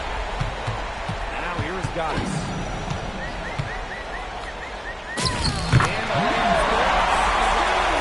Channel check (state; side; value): identical; both; correlation 1.00